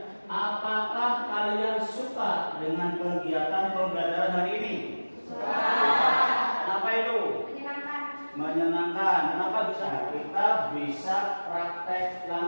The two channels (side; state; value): both; inverted; correlation -1.00